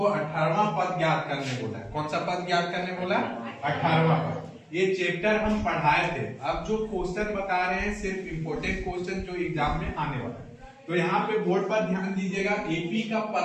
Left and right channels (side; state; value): both; identical; correlation 1.00